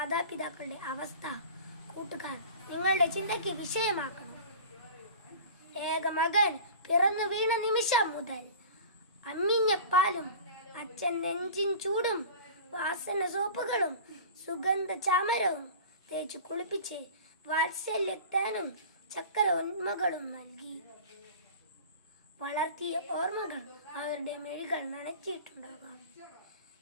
അവസ്ഥ കൂട്ടുകാർ നിങ്ങളുടെ ചിന്തയ്ക്ക് വിഷയമാക്കണം. ഏക മകൻ പിറന്നു വീണ നിമിഷം മുതൽ അമ്മിഞ്ഞ പാലും അച്ഛൻ നെഞ്ചിൻ ചൂടും വാസന സോപ്പുകളും സുഗന്ധ ചാമരവും തേച്ചു കുളിപ്പിച്ച് വാത്സല്യത്തേനും ചക്കര ഉന്മകളും നൽകി വളർത്തിയ ഓർമ്മകൾ അവരുടെ മെഴികൾ നനച്ചിട്ടുണ്ടാകാം.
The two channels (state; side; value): inverted; both; correlation -0.38